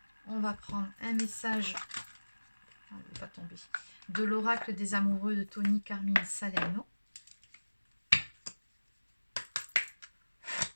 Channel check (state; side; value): inverted; both; correlation -1.00